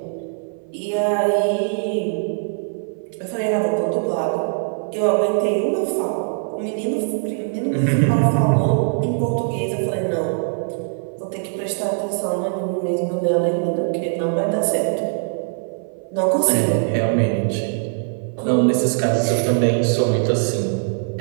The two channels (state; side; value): silent; left; 59 dB below the other